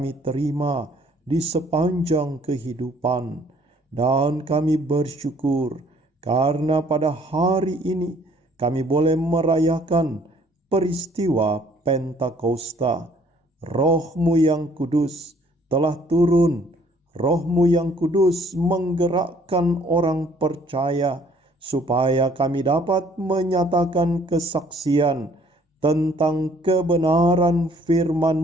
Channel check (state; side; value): normal; both; correlation 0.60